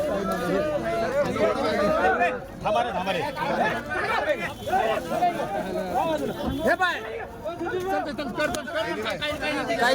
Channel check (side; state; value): both; identical; correlation 1.00